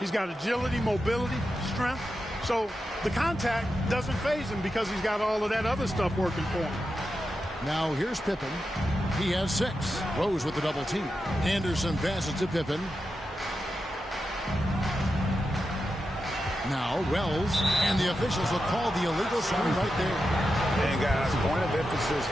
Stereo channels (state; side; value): normal; both; correlation 0.89